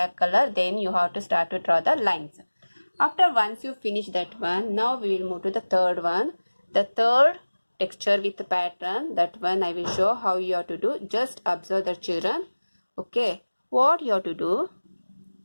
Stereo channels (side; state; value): both; inverted; correlation -1.00